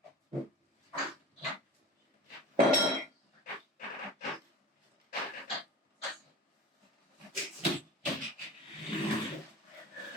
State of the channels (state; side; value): normal; both; correlation 0.36